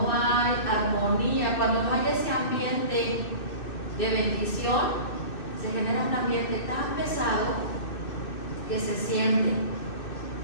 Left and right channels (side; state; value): right; late; 2.6 ms